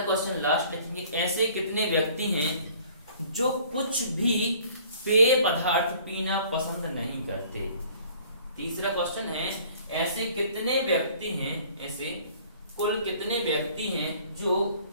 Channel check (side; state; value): both; inverted; correlation -0.53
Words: क्वेश्चन लास्ट लिखेंगे, ऐसे कितने व्यक्ति हैं जो कुछ भी पेय पदार्थ पीना पसंद नहीं करते। तीसरा क्वेश्चन है, ऐसे कितने व्यक्ति हैं, ऐसे कुल कितने व्यक्ति हैं जो